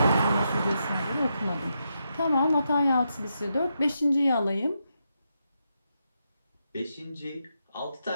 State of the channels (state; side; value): inverted; both; correlation -0.83